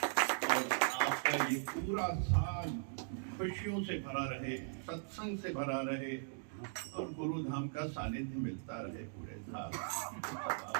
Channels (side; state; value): left; silent; digital silence